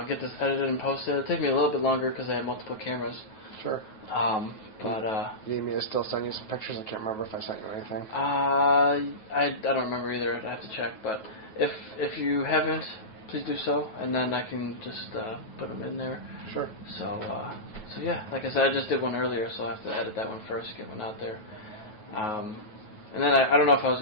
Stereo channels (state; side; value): late; right; 9.3 ms